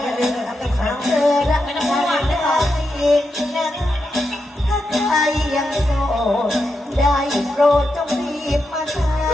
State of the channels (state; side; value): normal; both; correlation 0.86